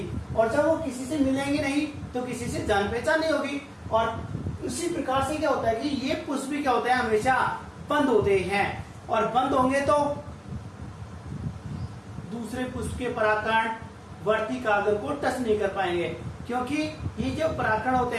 और जब वो किसी से मिलेंगे नहीं तो किसी से जान पहचान नहीं होगी। और उसी प्रकार से क्या होता है कि ये पुष्प भी क्या होते हैं, हमेशा बंद होते हैं, और बंद होंगे तो दूसरे पुष्प के परागकण वर्तिकाग्र को टच नहीं कर पाएंगे, क्योंकि ये जो परागकण होते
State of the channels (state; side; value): identical; both; correlation 1.00